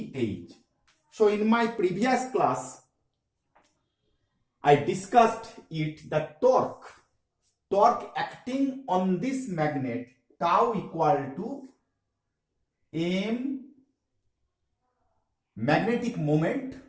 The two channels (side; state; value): both; identical; correlation 1.00